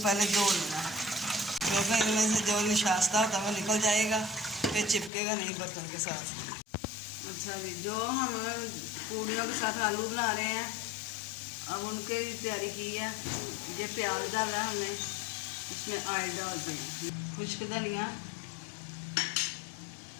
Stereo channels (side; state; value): right; drops out; at 5.1 s